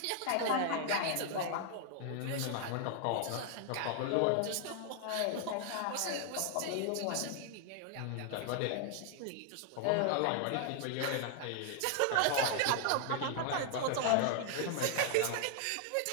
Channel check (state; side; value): different; both; correlation 0.00